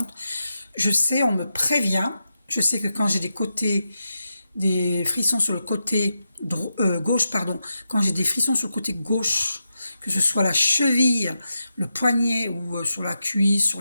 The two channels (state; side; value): inverted; both; correlation -0.88